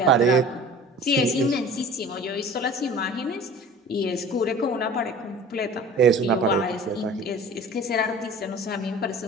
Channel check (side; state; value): both; normal; correlation 0.42